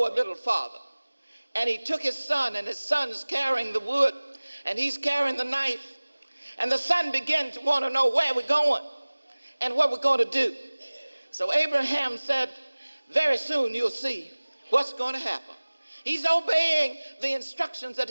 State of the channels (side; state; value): both; inverted; correlation -1.00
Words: a little farther. And he took his son, and his son's carrying the wood, and he's carrying the knife. And the son began to want to know where we're going and what we're going to do. So Abraham said, very soon you'll see what's going to happen. He's obeying the instructions that